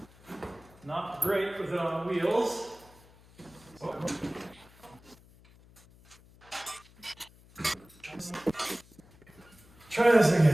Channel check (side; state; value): left; noise; hum, 25 dB below the sound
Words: Not great with it on wheels. Try this